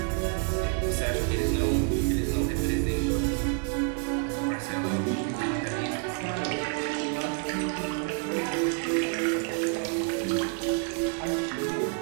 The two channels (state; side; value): quieter; left; 38.7 dB